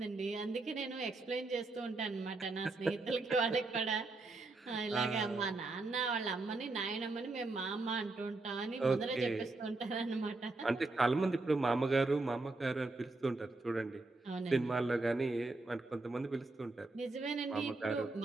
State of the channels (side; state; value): left; quieter; 3.3 dB